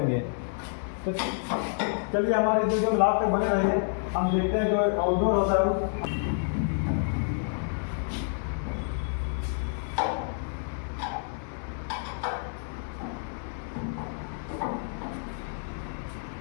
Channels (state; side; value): silent; right; 59 dB below the other